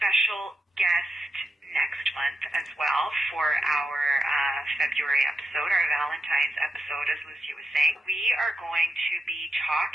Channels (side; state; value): both; normal; correlation 0.85